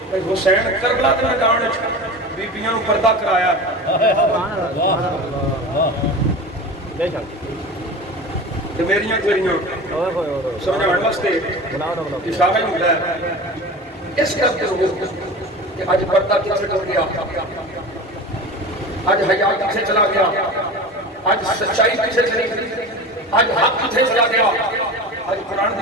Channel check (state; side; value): normal; both; correlation 0.31